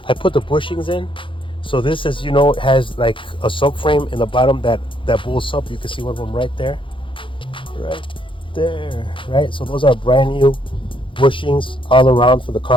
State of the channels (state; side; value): late; right; 0.25 ms